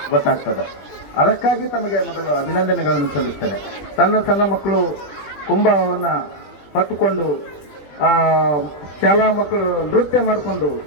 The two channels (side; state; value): right; late; 21 ms